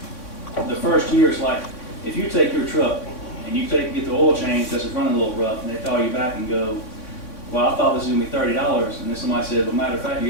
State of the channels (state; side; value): late; right; 3.6 ms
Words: the first year is like, if you take your truck and you get the oil change because it's running a little rough, and they call you back and go, well, I thought this was going to be $30, and then somebody said, well, matter of fact, you